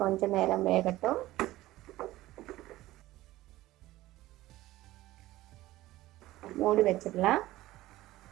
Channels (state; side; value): quieter; left; 16.6 dB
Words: கொஞ்சம் நேரம் வேகட்டும். மூடி வச்சிடலாம்.